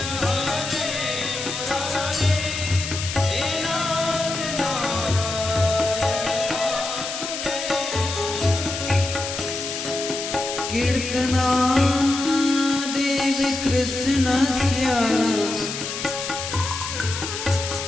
कीर्तना देवी कृष्णस्य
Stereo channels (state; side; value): noise; left; hiss, 5 dB below the sound